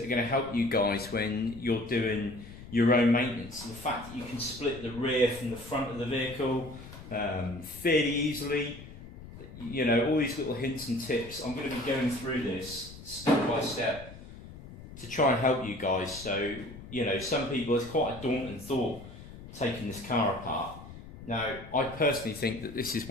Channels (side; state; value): left; noise; rumble, 15 dB below the sound